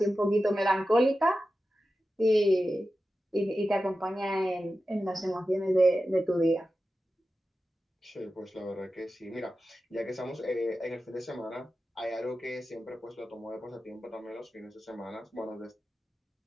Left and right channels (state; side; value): normal; both; correlation 0.93